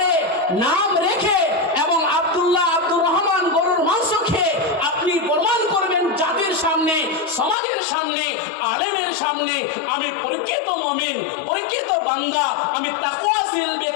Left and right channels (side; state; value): right; drops out; at 7.6 s